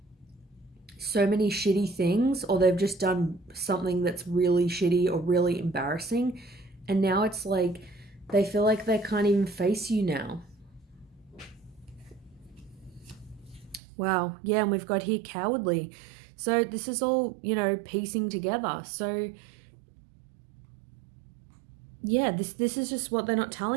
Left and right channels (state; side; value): drops out; left; at 13.8 s